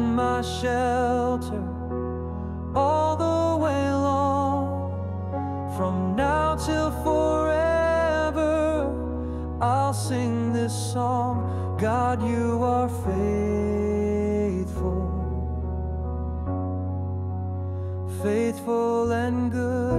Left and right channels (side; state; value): both; identical; correlation 1.00